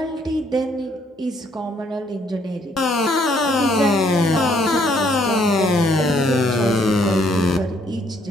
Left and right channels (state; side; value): normal; both; correlation 0.67